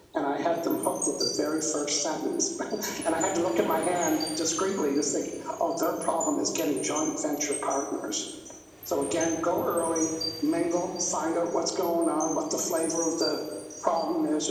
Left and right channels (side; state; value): both; identical; correlation 1.00